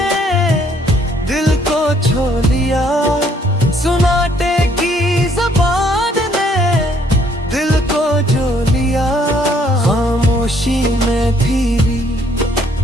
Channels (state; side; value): normal; both; correlation 0.65